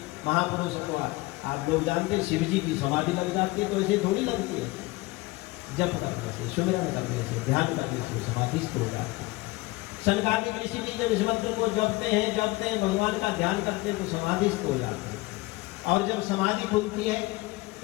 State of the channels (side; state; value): right; quieter; 21.6 dB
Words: महापुरुष को आप लोग जानते हैं, शिव जी की समाधि लग जाती है, तो ऐसे थोड़ी लगती है। जप करने से, सुमरण करने से, ध्यान करने से समाधिस्थ हो जाती है। सनकादिक ऋषि भी जब इस मंत्र को जपते हैं, भगवान का ध्यान करते हैं, तो समाधिस्थ हो जाते हैं। और जब समाधि खुलती है